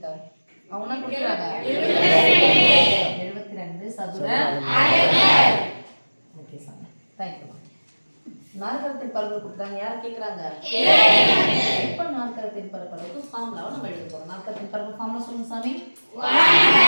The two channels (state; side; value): inverted; both; correlation -1.00